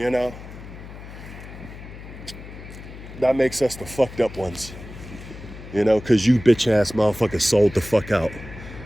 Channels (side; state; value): left; noise; hum, 14 dB below the sound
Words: know. That makes us the fucked up ones. You know, because you bitch ass motherfuckers sold the fuck out.